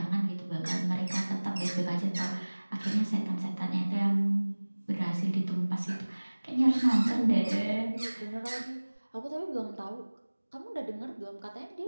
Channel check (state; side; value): inverted; both; correlation -1.00